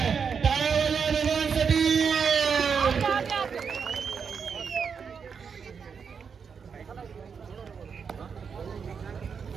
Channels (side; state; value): left; quieter; 6.3 dB